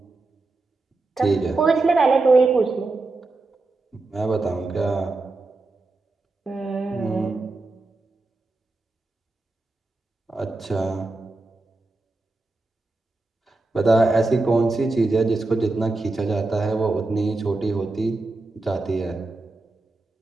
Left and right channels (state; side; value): quieter; left; 3.3 dB